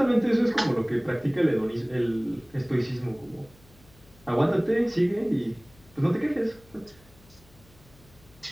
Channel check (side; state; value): left; noise; hum, 27 dB below the sound